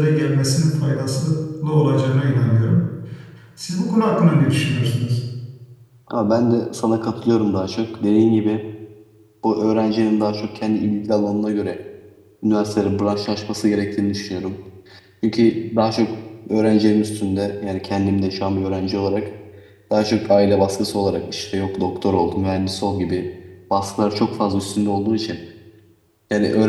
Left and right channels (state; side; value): identical; both; correlation 1.00